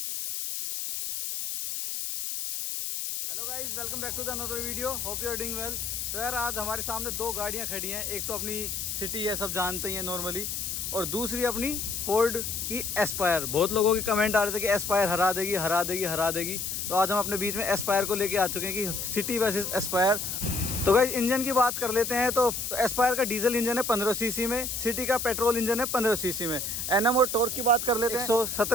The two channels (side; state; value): left; noise; hiss, 3 dB below the sound